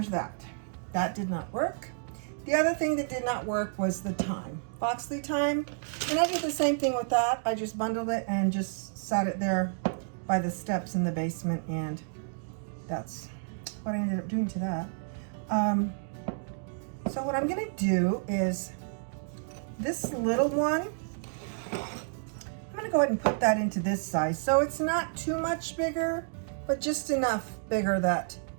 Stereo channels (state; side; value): silent; left; digital silence